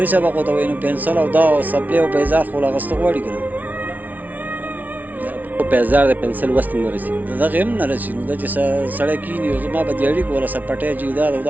سبق ورته وایي نو پنسل او دا سپلې او پیزار خو اخیسته غواړي که نه. پیزار د پنسل وس ته نه رسي، د دغې هم نه رسي، نو دا چې سړی کښېني او زما به دیاړي کوله سپټی جیداد او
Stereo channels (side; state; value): left; late; 0.077 ms